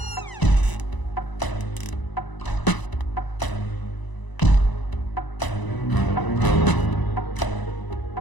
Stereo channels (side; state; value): right; late; 1.0 ms